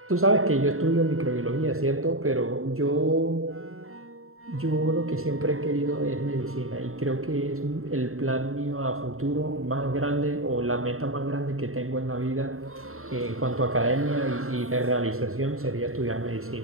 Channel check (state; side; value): late; left; 0.62 ms